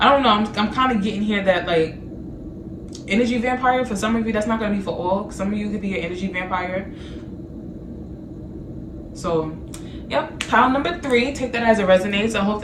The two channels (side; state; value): both; identical; correlation 1.00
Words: don't know. I'm kind of getting here that like energy vampire. For some of you, that's not going to be for all. Some of you could be an energy vampire. So yep, pile number 3, take that as it resonates. I hope